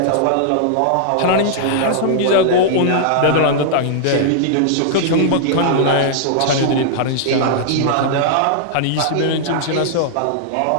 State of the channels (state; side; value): different; both; correlation -0.01